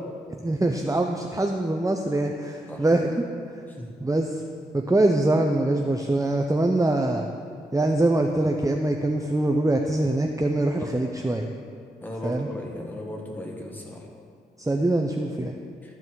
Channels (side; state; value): both; normal; correlation 0.87